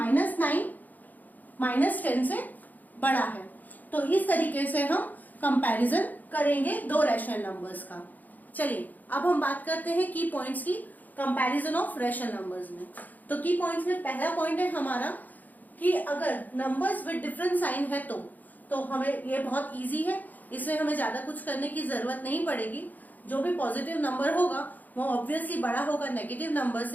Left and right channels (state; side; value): late; right; 0.082 ms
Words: -10 से बड़ा है। तो इस तरीके से हम कंपैरिजन करेंगे दो रैशनल नंबर्स का। चलिए, अब हम बात करते हैं की पॉइंट्स की कंपैरिजन ऑफ रैशनल नंबर्स में। तो की पॉइंट्स में पहला पॉइंट है हमारा कि अगर नंबर्स विद डिफरेंट साइन है तो हमें ये बहुत इजी है, इसमें हमें ज्यादा कुछ करने की जरूरत नहीं पड़ेगी। जो भी पॉजिटिव नंबर होगा वो ऑब्वियसली बड़ा होगा नेगेटिव नंबर